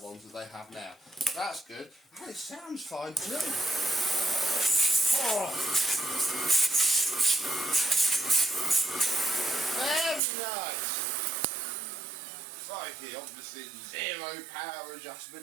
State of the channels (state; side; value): drops out; left; at 10.2 s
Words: ones that they have now. That's good. And it sounds fine too. Oh. Very nice. Crikey, obviously zero power